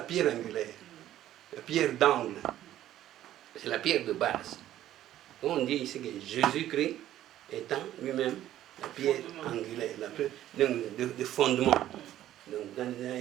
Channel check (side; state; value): left; quieter; 12.8 dB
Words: pierre angulaire. La pierre d'angle. C'est la pierre de base. On dit ici que Jésus-Christ étant lui-même la pierre angulaire, la pierre de fondement. Donc dans